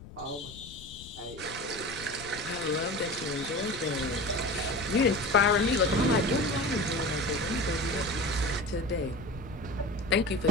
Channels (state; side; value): noise; left; rumble, 16 dB below the sound